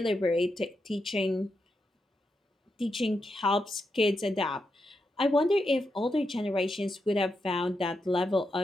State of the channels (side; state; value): both; normal; correlation 0.85